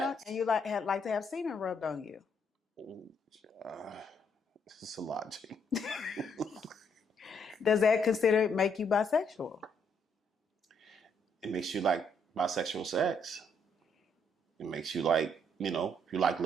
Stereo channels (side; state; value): both; normal; correlation 0.72